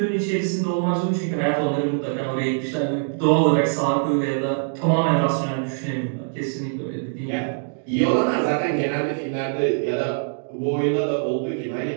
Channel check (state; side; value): silent; left; digital silence